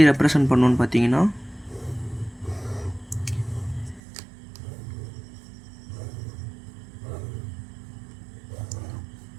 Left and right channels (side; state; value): left; drops out; at 4.0 s